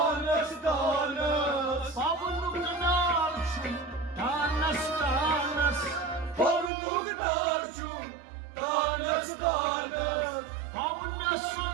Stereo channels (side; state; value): left; drops out; at 6.7 s